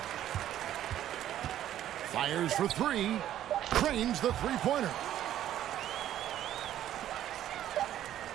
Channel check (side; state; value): left; quieter; 11.9 dB